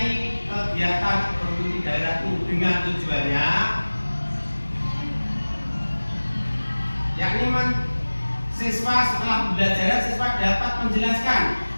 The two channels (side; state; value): both; inverted; correlation -1.00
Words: kegiatan ekonomi di daerahku, dengan tujuannya yakni siswa setelah pembelajaran siswa dapat menjelaskan